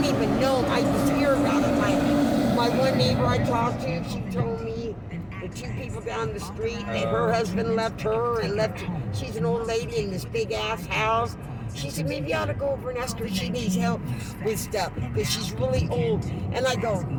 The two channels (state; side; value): identical; both; correlation 1.00